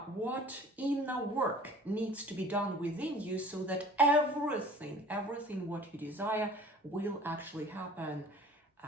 what inner work needs to be done within you so that everything what you desire will actually happen,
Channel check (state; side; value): normal; both; correlation 0.47